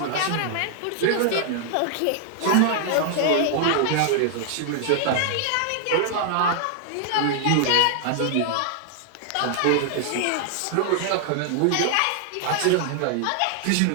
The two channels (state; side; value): different; both; correlation 0.00